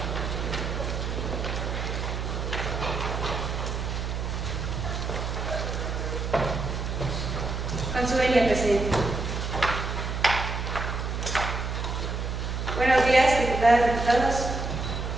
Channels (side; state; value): right; noise; hum, 3 dB below the sound